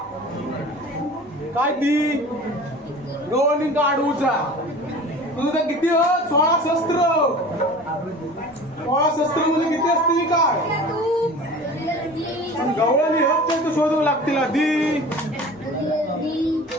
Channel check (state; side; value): normal; both; correlation 0.40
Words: काय ती गवळणी काढूचा तुझं तर किती 16 शस्त्र. 16 शस्त्र म्हणजे किती असतील काय? गवळणी तू शोधू लागतील आधी.